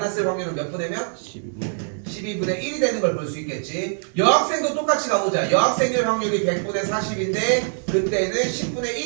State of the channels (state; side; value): silent; left; digital silence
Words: 확률은 몇 분의 몇? 12분의 1이 되는 걸 볼 수 있겠지. 여학생도 똑같이 가보자. 여학생일 확률이 100분의 40인데 그때는 10분의